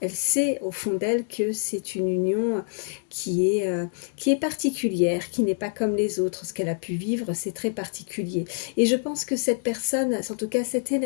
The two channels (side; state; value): right; silent; 61 dB below the other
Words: Elle sait au fond d'elle que c'est une union qui est particulière, qui n'est pas comme les autres. Ce qu'elle a pu vivre, c'est très particulier. Et je pense que cette personne, en tout cas cette